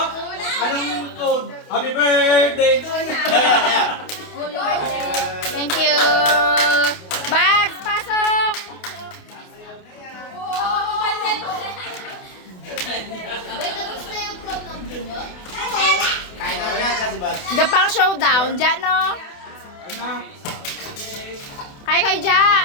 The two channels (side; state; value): right; late; 28 ms